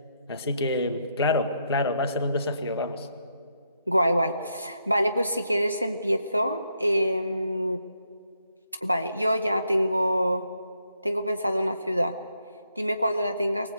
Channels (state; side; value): inverted; both; correlation -0.77